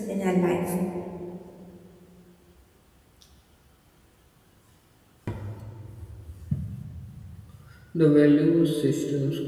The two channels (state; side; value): identical; both; correlation 1.00